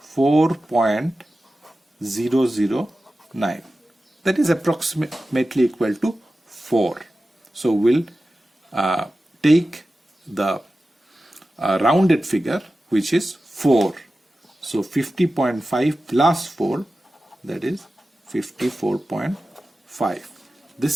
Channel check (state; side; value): normal; both; correlation 0.94